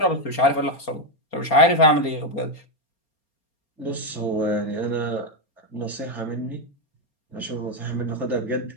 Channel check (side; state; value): right; late; 4.3 ms